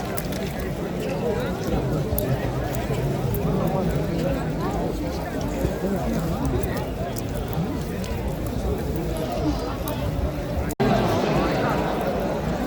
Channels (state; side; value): identical; both; correlation 1.00